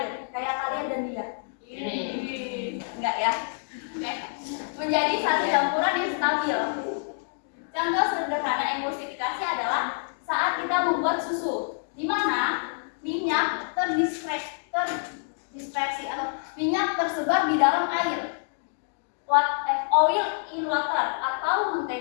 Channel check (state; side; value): silent; right; digital silence